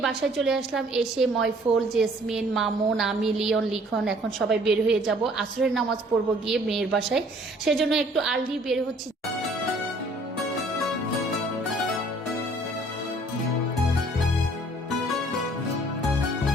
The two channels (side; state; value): both; normal; correlation 0.57